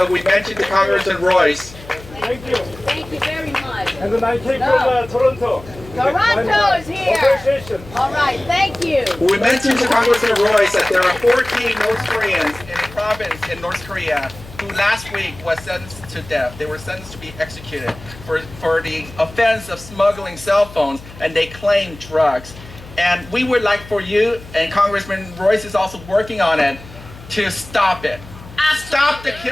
we mentioned to Congressman Royce. Thank you. Thank you very much. And then I came from Toronto. Toronto is here. Association. All right, thank you. We mentioned to Congressman Royce that there are 14 North Koreans in a province in North Korea who last week was sentenced to death. They were sentenced to be executed for the offense of smuggling cell phones, and they claim drugs. And we would like for you, and Congressman Royce is also working on it, to stop it. Stop the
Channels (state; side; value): noise; left; hum, 18 dB below the sound